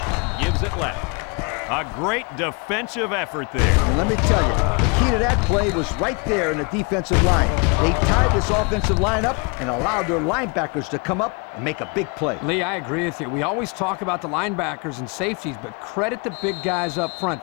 gives it left. A great defensive effort there. And let me tell you, the key to that play was right there in the defensive line. They tied this offensive line up and allowed their linebackers to come up and make a big play. Lee, I agree with you. We always talk about the linebackers and safeties, but credit the big guys up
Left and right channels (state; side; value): quieter; right; 32.1 dB